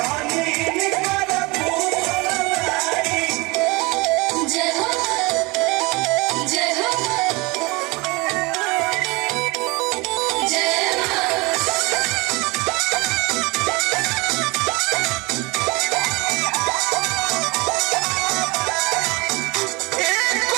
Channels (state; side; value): quieter; left; 25.0 dB